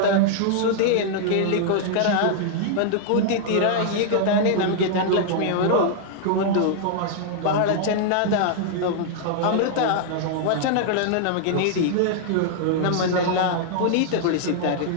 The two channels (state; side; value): different; both; correlation -0.01